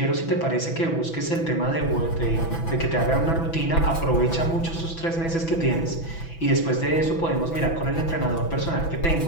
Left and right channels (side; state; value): right; late; 6.0 ms